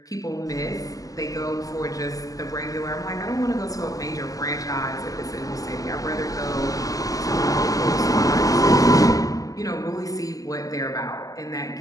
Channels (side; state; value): right; late; 0.17 ms